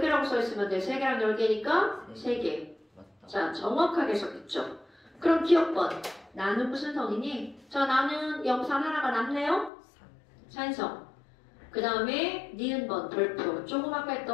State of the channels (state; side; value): drops out; right; at 9.7 s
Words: 써있으면 돼? 3개랑 10개니까 3개. 맞다. 자, 정확하게 해석했죠. 그럼 기억번. 나는 무슨 성이니? 자, 나는 염산 하나가 남네요? 3. 산성. 그 다음에 니은번, 별표. 조금 아까